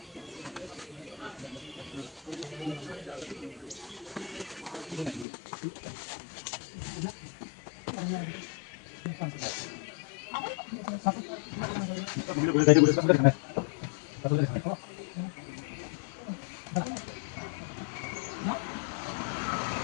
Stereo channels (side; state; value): right; drops out; at 5.2 s